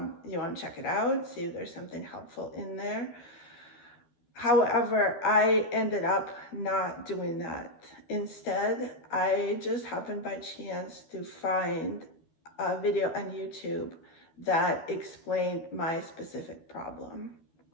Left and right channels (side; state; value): right; late; 13 ms